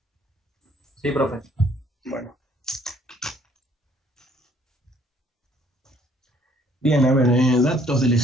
Sí, profe. Bueno. Bien, a ver, datos del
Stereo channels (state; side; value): normal; both; correlation 0.62